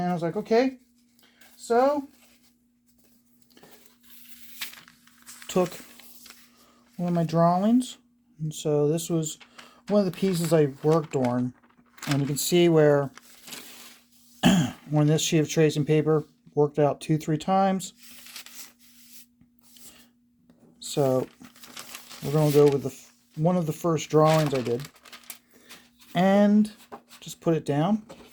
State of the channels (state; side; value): identical; both; correlation 1.00